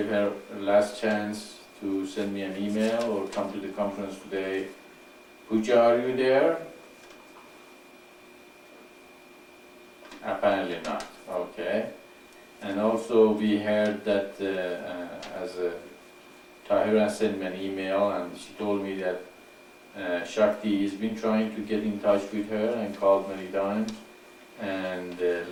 her a last chance to send me an email or come to the conference today. Pooja, are you there? Apparently not. Okay. And also we heard that Tahira sent me an email and she told me that Shakti has been trying to get in touch with her and called many times and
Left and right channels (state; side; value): identical; both; correlation 1.00